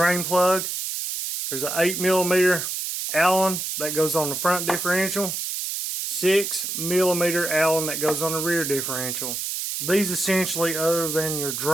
plug. There's an 8 millimeter Allen that goes on the front differential. 6 millimeter Allen that goes on the rear differential. These essentially, other than your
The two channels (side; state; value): right; noise; hiss, 3 dB below the sound